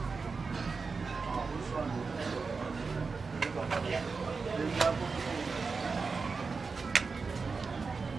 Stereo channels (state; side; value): quieter; left; 4.6 dB